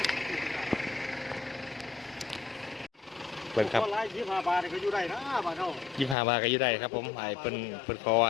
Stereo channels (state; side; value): drops out; right; at 6.2 s